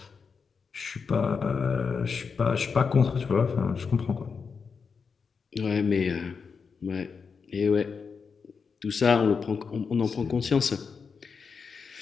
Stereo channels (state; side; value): quieter; right; 5.5 dB